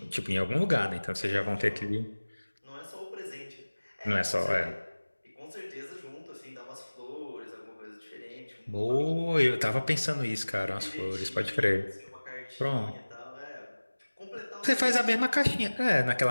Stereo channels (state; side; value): inverted; both; correlation -1.00